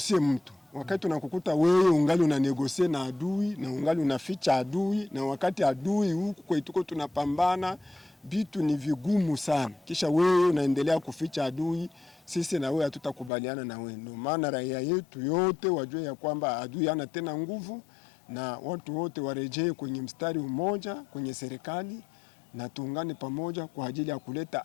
mtu. Wakati unakukuta wewe ungali unanegosie na adui na ungali unaficha adui, na wakati adui huku kwetuko tunapambana, vitu ni vigumu sana. Kisha wewe unaendelea kuficha adui, sisi na wewe hatutakubaliana na wewe. Ndio maana raia yetu yote wajue ya kwamba adui hana tena nguvu, na watu wote warejee kwenye mstari mmoja kwenye serikali, na tuungane pamoja kwa ajili ya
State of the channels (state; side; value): drops out; right; at 13.3 s